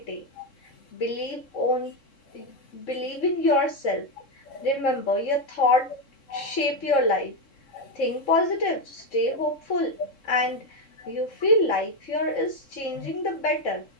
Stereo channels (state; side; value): late; right; 3.7 ms